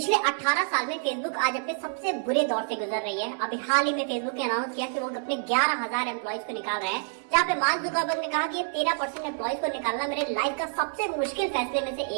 18 साल में फेसबुक आज अपने सबसे बुरे दौर से गुजर रही है। अभी हाल ही में फेसबुक ने अनाउंस किया कि वो अपने 11,000 एम्प्लॉइज को निकाल रहे हैं, जहाँ पे मार्क जुकरबर्ग ने कहा कि 13% एम्प्लॉइज को निकालना मेरे लाइफ का सबसे मुश्किल फैसले में से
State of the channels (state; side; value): silent; left; digital silence